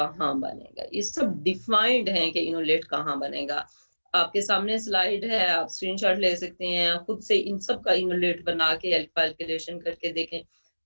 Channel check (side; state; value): both; inverted; correlation -1.00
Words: बनेगा, ये सब डिफाइंड है कि इनोलेट कहाँ बनेगा। आपके सामने स्लाइड है, आप स्क्रीनशॉट ले सकते हैं, खुद से इन सब का इनोलेट बना के कैलकुलेशन करके देखें